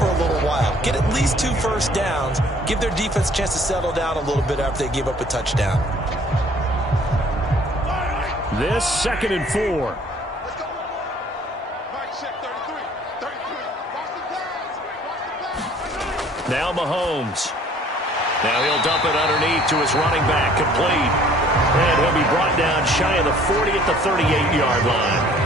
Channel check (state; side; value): normal; both; correlation 0.56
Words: a little while. Get at least 2 first downs. Give their defense a chance to settle down a little bit after they give up a touchdown. This 2nd and 4. Now Mahomes. Now he'll dump it underneath to his running back, complete. And he'll be brought down shy of the 40 at the 38-yard line.